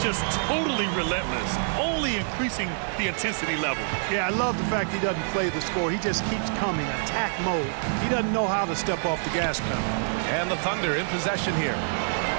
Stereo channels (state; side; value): silent; left; digital silence